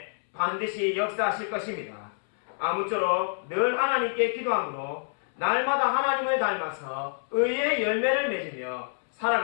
반드시 역사하실 것입니다. 아무쪼록 늘 하나님께 기도함으로 날마다 하나님을 닮아서 의의 열매를 맺으며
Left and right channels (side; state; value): right; silent; 60 dB below the other